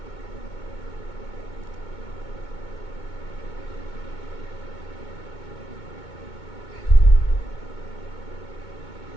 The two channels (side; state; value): right; late; 2.2 ms